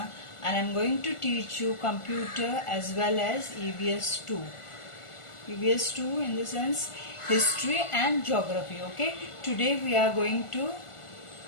and I am going to teach you computer as well as EVS 2. EVS 2 in the sense history and geography, okay? Today we are going to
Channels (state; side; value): late; right; 1.4 ms